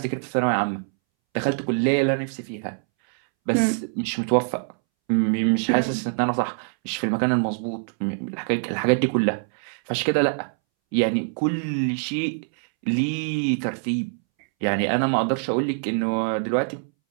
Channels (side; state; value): left; silent; 63 dB below the other